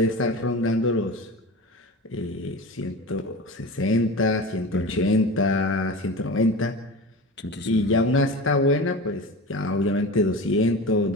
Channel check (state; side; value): normal; both; correlation 0.30